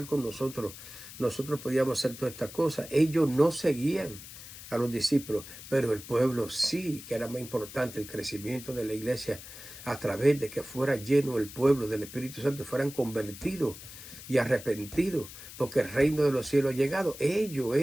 con nosotros podíamos hacer todas estas cosas. Ellos no seguían a los discípulos, pero el pueblo sí, que era más importante el crecimiento de la iglesia a través de que fuera lleno el pueblo del Espíritu Santo, fueran convertidos y arrepentidos, porque el reino de los cielos ha llegado. Ellos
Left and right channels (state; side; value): noise; left; hiss, 14 dB below the sound